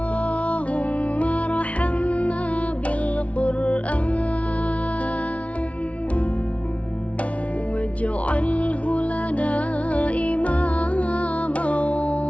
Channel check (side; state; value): right; late; 0.064 ms